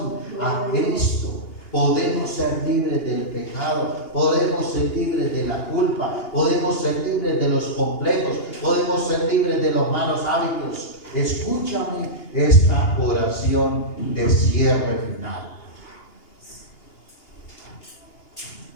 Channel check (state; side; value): late; right; 2.8 ms